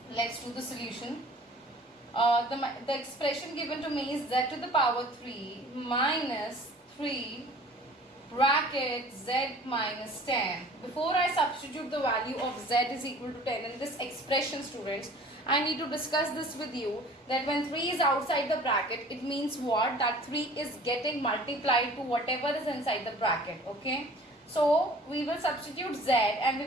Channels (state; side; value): normal; both; correlation 0.48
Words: Let's do the solution. The expression given to me is z to the power 3 minus 3 bracket z minus 10. Before I substitute the value of z is equal to 10 in this expression, students, I need to discuss this with you that when 3 is outside the bracket, it means what? That 3 is getting multiplied to whatever is inside the bracket. Okay. So we will substitute z and we